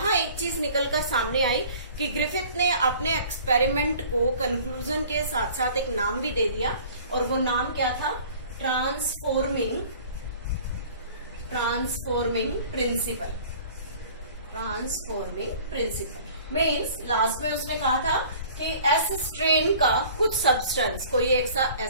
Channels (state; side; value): inverted; both; correlation -0.48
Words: एक चीज निकलकर सामने आई कि ग्रिफिथ ने अपने एक्सपेरिमेंट को कंक्लूजन के साथ साथ एक नाम भी दे दिया और वो नाम क्या था, ट्रांसफॉर्मिंग प्रिंसिपल। मीन्स लास्ट में उसने कहा था कि एस स्ट्रेन का कुछ सब्सटेंस, कोई